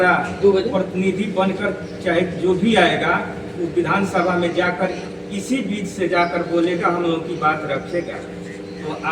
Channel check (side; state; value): both; identical; correlation 1.00